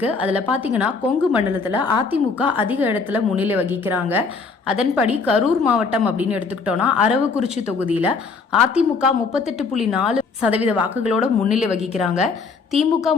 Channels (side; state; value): right; quieter; 4.7 dB